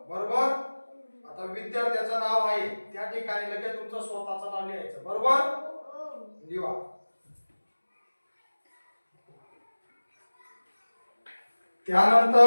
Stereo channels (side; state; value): both; inverted; correlation -1.00